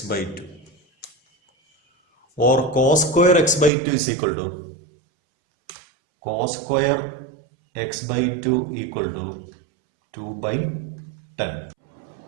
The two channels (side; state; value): left; drops out; at 3.7 s